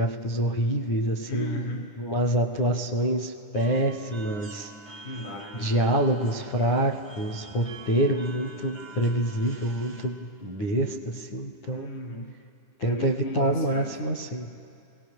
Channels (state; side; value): late; right; 10 ms